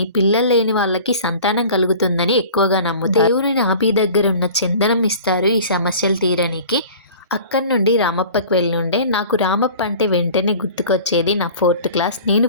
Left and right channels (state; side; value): inverted; both; correlation -0.43